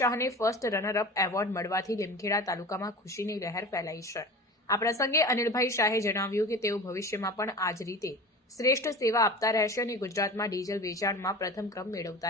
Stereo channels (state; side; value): normal; both; correlation 0.34